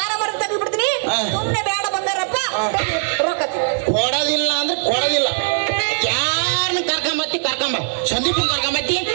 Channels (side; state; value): left; silent; 66 dB below the other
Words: ಮರ ತೆಗೆದು ಬಿಡ್ತೀನಿ ಸುಮ್ಮನೆ ಬೇಡ ಬಂದಾರಪ್ಪ ರೊಕ್ಕ ಕೊಡೋದಿಲ್ಲ ಅಂದ್ರೆ ಕೊಡೋದಿಲ್ಲ ಯಾರನ್ನ ಕರ್ಕೊಂಬ ಸಂದೀಪನ್ ಕರ್ಕೊಂಬತ್ತಿ